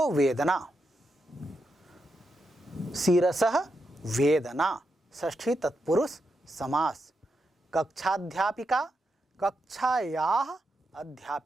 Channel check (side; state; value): both; normal; correlation 0.85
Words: वेदना, शिरसः वेदना, षष्ठी तत्पुरुष समास। कक्षाध्यापिका, कक्षायाः